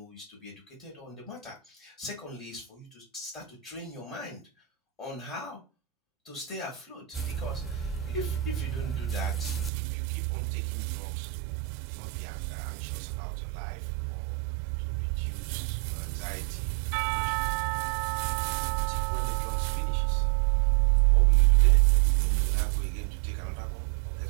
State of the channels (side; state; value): left; drops out; at 9.7 s